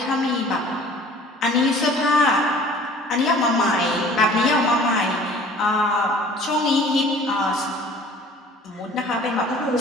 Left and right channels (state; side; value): normal; both; correlation 0.49